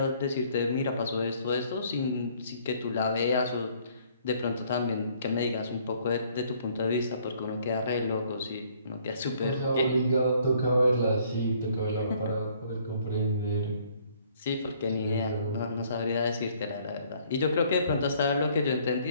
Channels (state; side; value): inverted; both; correlation -0.62